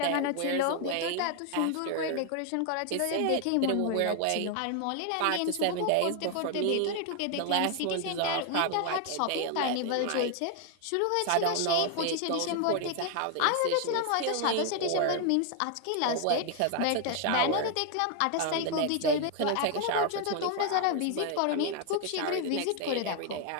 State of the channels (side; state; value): both; different; correlation 0.00